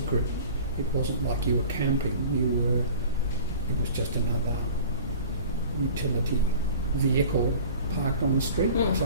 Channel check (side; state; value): both; inverted; correlation -0.43